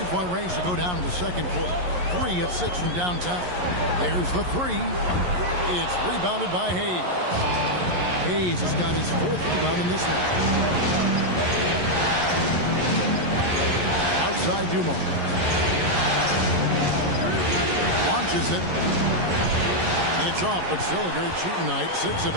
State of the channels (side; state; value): left; late; 11 ms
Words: range to go down in the second quarter. 3 of 6 from downtown. There's the 3. It's rebounded by Hayes. Hayes has got his 4th rebound in this one. Outside Dumars. Launches it. It's off, but still a great shooting night. 6 of